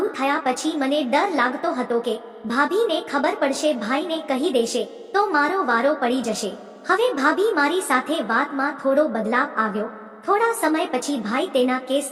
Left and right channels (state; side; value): identical; both; correlation 1.00